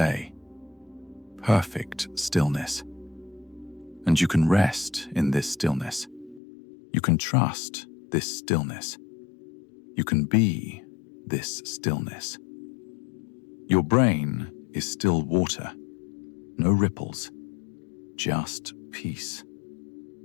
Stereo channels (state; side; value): drops out; right; at 6.4 s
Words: Perfect stillness. And you can rest in this stillness. You can trust this stillness. You can be this stillness. Your brain is still water, no ripples, just peace.